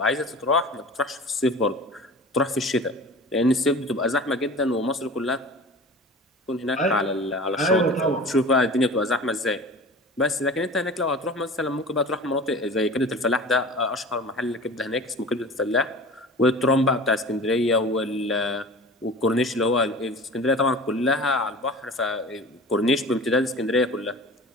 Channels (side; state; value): both; normal; correlation 0.38